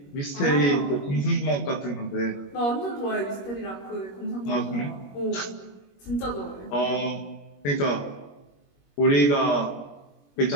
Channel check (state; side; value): late; right; 21 ms